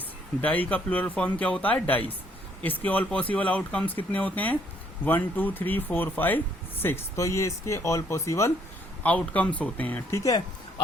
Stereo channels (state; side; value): normal; both; correlation 0.67